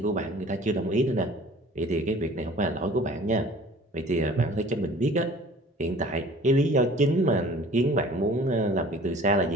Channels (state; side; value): normal; both; correlation 0.48